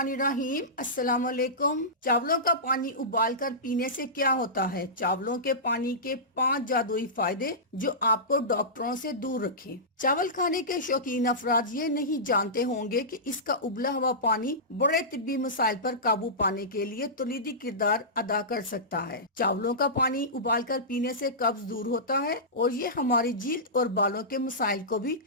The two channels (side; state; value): both; normal; correlation -0.18